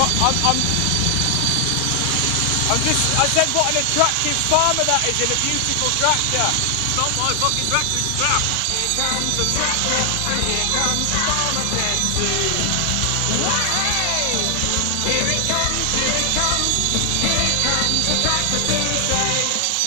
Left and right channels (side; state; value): both; different; correlation 0.00